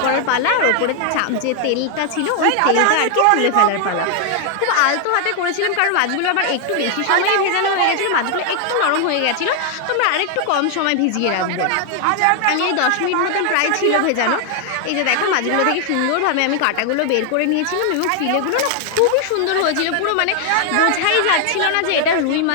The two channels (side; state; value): both; different; correlation 0.00